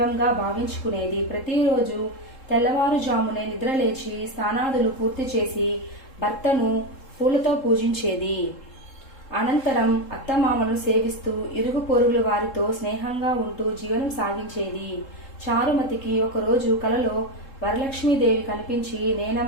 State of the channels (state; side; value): late; right; 3.7 ms